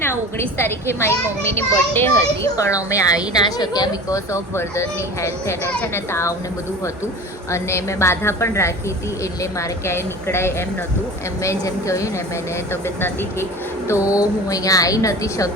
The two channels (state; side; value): normal; both; correlation 0.37